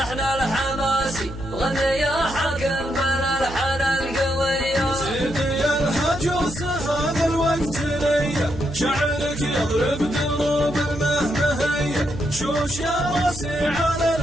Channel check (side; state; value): right; noise; hum, 12 dB below the sound